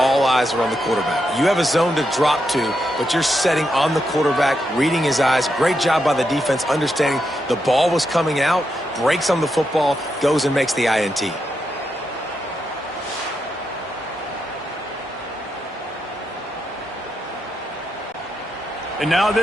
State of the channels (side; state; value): both; normal; correlation 0.83